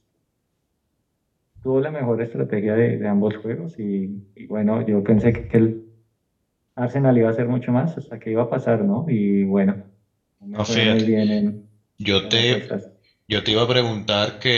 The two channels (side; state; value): both; identical; correlation 1.00